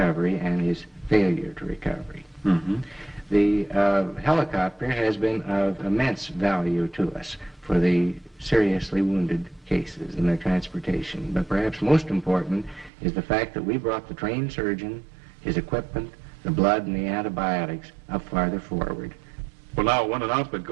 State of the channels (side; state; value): left; drops out; at 12.9 s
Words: and his failure to recovery. Mm-hmm. The helicopter has been of immense value to us for the seriously wounded cases and their transportation. But perhaps most important is the fact that we brought the trained surgeon, his equipment, the blood, and the antibiotics up farther forward. Well, now, when an outfit